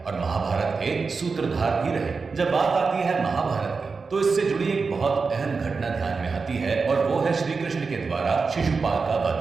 और महाभारत के सूत्रधार भी रहे। जब बात आती है महाभारत की तो इससे जुड़ी एक बहुत अहम घटना ध्यान में आती है और वो है श्री कृष्ण के द्वारा शिशुपाल का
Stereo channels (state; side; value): quieter; left; 4.7 dB